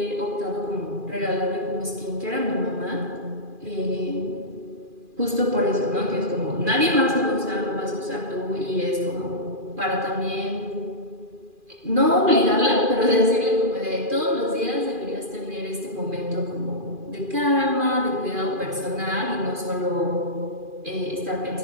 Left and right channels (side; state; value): left; late; 2.4 ms